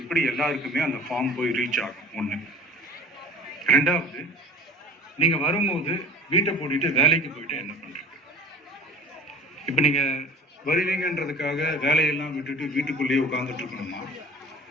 எல்லாருக்குமே அந்த ஃபார்ம் போய் ரீச் ஆகும்? ஒண்ணு. ரெண்டாவது, நீங்க வரும்போது வீட்டை பூட்டிட்டு வேலைக்கு போயிட்டு என்ன பண்றீங்க? இப்ப நீங்க வருவீங்கன்றதுக்காக வேலையெல்லாம் விட்டுட்டு வீட்டுக்குள்ளேயே உட்கார்ந்துட்டு இருக்கணுமா?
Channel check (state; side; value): normal; both; correlation 0.43